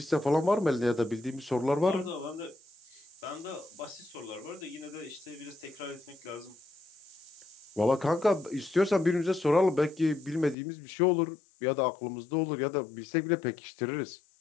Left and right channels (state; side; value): drops out; right; at 10.6 s